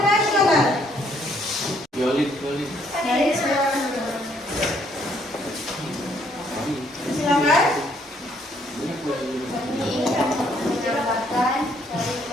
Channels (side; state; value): both; normal; correlation 0.68